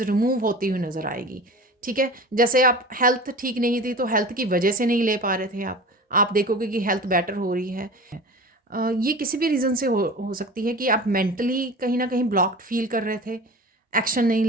रिमूव होती हुई नज़र आएगी। ठीक है, जैसे आप हेल्थ ठीक नहीं थी तो हेल्थ की वजह से नहीं ले पा रहे थे आप देखोगे कि हेल्थ बेटर हो रही है। ये किसी भी रीज़न से हो सकती है कि आप मेंटली कहीं ना कहीं ब्लॉक्ड फील कर रहे थे, एक्शन नहीं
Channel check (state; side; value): normal; both; correlation 0.35